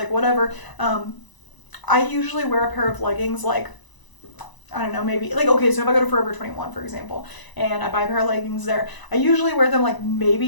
whatever, I usually wear a pair of leggings like, I don't know, maybe, like, okay, so if I go to Forever 21, for example, and I buy a pair of leggings there, I usually wear them like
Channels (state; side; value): late; right; 1.0 ms